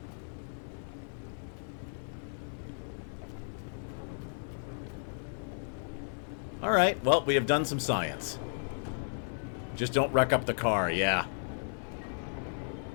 Alright, well, we have done some science. Just don't wreck up the car, yeah.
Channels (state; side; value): silent; right; digital silence